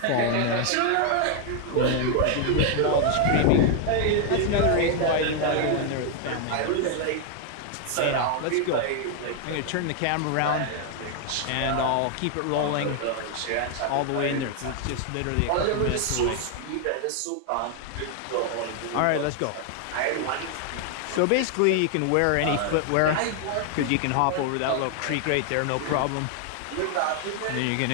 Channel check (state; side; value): different; both; correlation 0.00